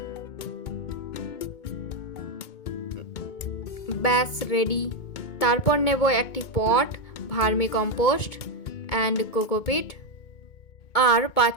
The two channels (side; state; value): right; late; 2.2 ms